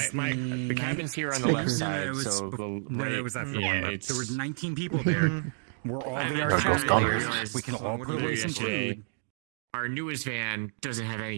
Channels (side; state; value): left; silent; digital silence